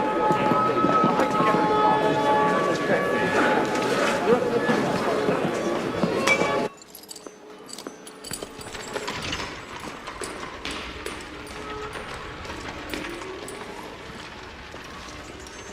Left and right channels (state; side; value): identical; both; correlation 1.00